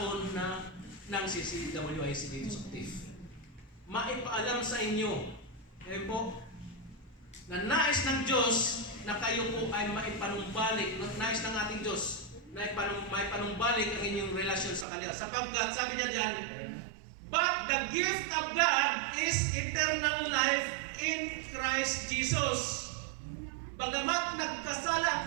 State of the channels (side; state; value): left; drops out; at 14.9 s